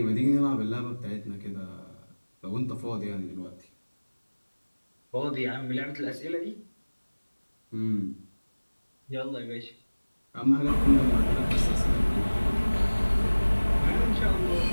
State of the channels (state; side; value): inverted; both; correlation -1.00